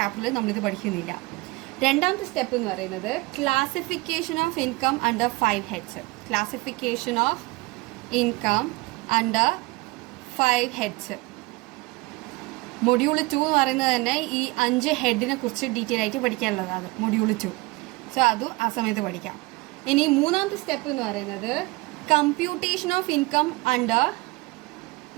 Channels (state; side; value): quieter; left; 23.6 dB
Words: നമ്മളിത് പഠിക്കുന്നില്ല. രണ്ടാമത്തെ സ്റ്റെപ്പ് എന്ന് പറയുന്നത് classification of income under 5 heads. Classification of income under 5 heads. Module 2 എന്ന് പറയുന്നത് തന്നെ ഈ 5 ഹെഡിനെ കുറിച്ച് ഡീറ്റെയിൽ ആയിട്ട് പഠിക്കാനുള്ളതാണ് മൊഡ്യൂൾ 2. സോ അതും ആ സമയത്ത് പഠിക്കാം. ഇനി മൂന്നാമത്തെ സ്റ്റെപ്പ് എന്ന് പറയുന്നത് computation of income under